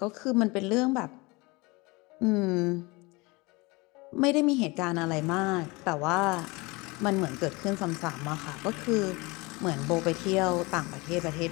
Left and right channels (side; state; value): right; quieter; 25.0 dB